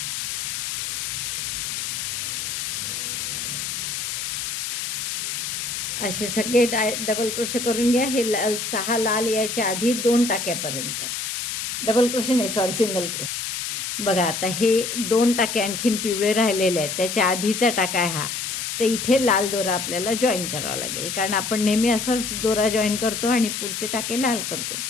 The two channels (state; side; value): noise; left; hiss, 3 dB below the sound